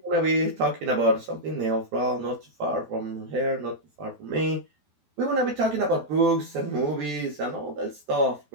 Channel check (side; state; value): left; late; 12 ms